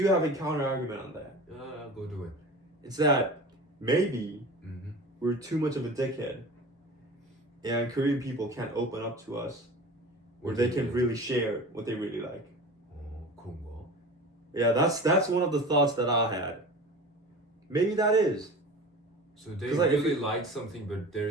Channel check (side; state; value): both; normal; correlation 0.36